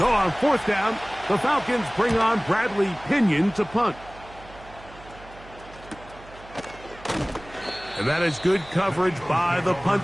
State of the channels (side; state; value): right; noise; hum, 20 dB below the sound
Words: on 4th down, the Falcons bring on Bradley Pinion to punt. And that is good coverage by the